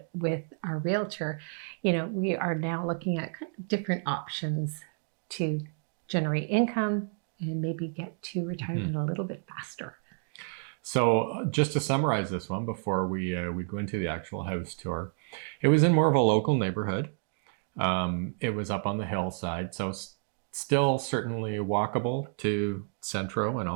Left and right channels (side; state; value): left; silent; 58 dB below the other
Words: with our realtor, we are now looking at different options to generate income and maybe get to retirement a little bit faster. So just to summarize this one before we go into the actual house tour, it was in more of a local neighborhood. It was up on the hillside, so still certainly walkable to Centro and